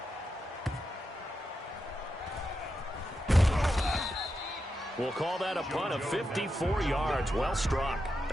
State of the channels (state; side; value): normal; both; correlation 0.87